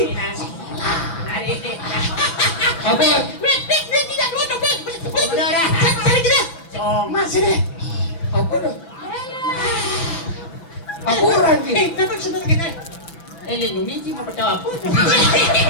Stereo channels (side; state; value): right; late; 6.0 ms